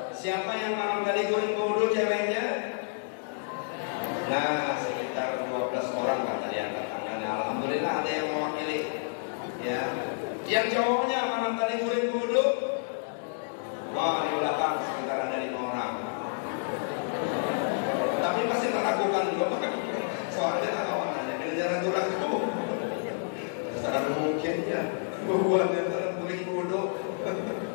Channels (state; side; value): silent; right; digital silence